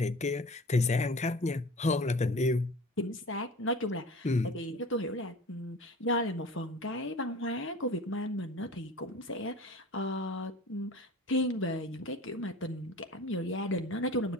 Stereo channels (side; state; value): both; normal; correlation 0.40